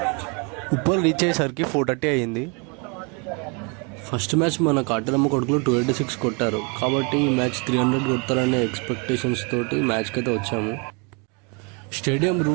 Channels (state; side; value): quieter; left; 33.5 dB